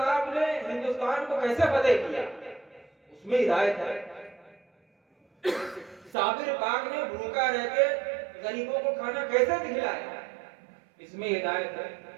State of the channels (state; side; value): drops out; left; at 6.2 s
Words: نے ہندوستان کو کیسے فتح کیا، اس میں ہدایت ہے۔ صابر پاک نے بھوکا رہ کے غریبوں کو کھانا کیسے کھلایا، اس میں ہدایت ہے۔